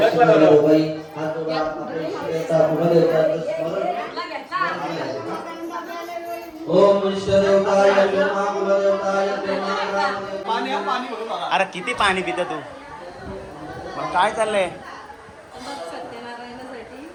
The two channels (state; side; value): identical; both; correlation 1.00